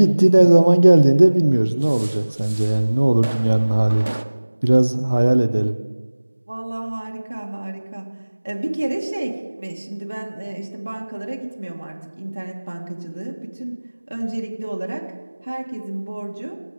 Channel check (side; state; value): both; inverted; correlation -1.00